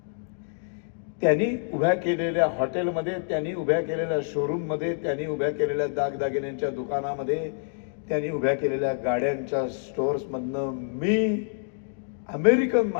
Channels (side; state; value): right; silent; digital silence